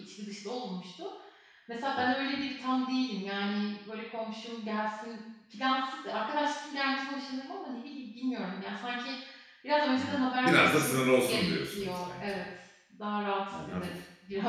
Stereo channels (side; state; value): both; identical; correlation 1.00